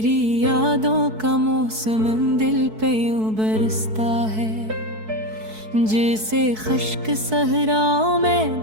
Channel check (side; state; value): left; late; 4.6 ms